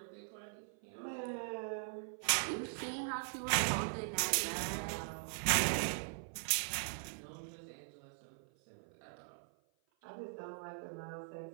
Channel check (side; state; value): left; silent; 51 dB below the other